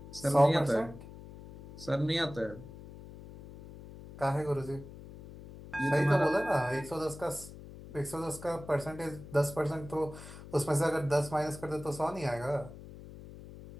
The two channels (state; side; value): noise; left; hum, 15 dB below the sound